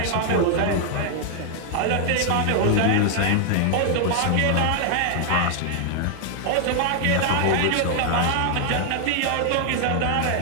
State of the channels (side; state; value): both; different; correlation 0.00